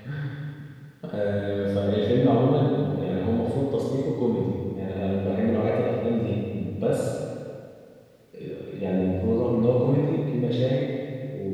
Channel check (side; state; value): both; identical; correlation 1.00